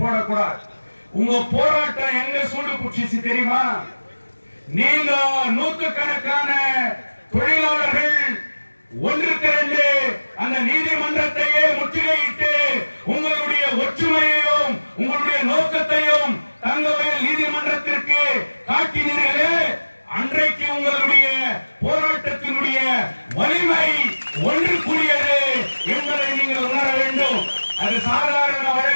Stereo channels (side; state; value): both; inverted; correlation -1.00